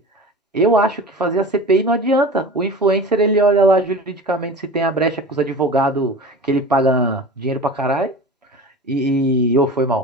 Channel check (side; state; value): both; normal; correlation 0.35